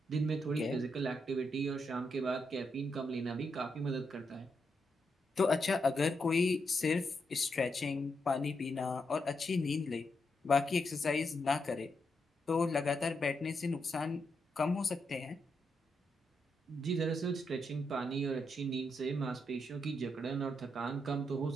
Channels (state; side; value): normal; both; correlation 0.82